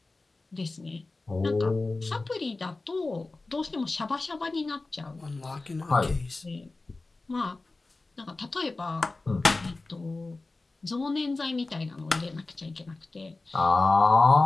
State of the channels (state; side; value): quieter; right; 3.4 dB